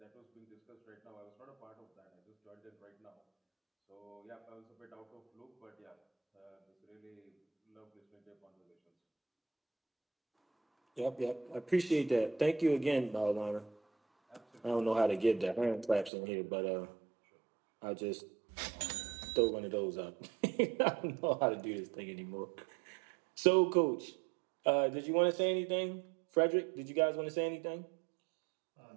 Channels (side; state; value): left; drops out; at 16.1 s